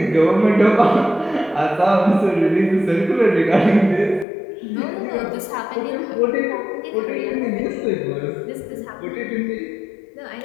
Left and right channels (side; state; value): right; drops out; at 4.2 s